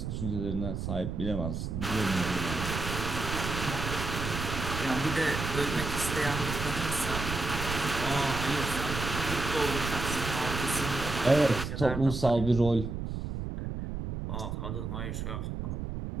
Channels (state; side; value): noise; right; rumble, 4 dB below the sound